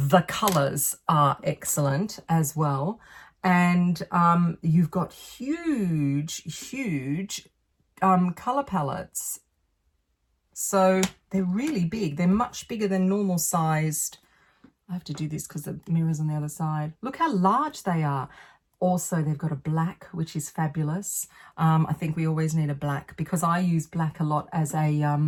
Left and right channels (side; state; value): both; identical; correlation 1.00